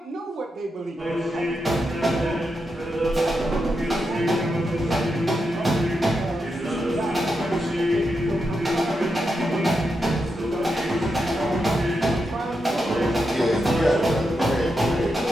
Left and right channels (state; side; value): normal; both; correlation 0.86